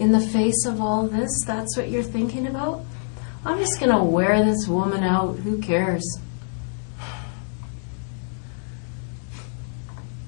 the face of all this, that's what you're thinking about? I'm just going to wear this woman out. Who cares?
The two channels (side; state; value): right; silent; 62 dB below the other